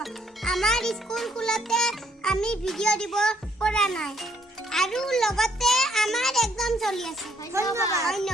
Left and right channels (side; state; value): both; normal; correlation 0.68